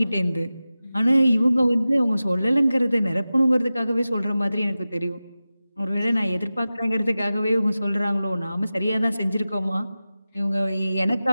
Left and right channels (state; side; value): inverted; both; correlation -0.95